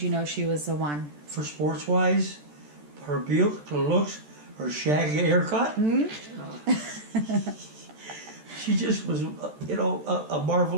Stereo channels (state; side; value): late; left; 14 ms